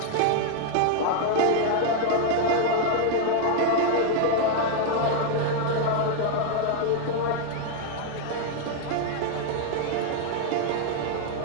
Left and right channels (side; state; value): both; different; correlation 0.00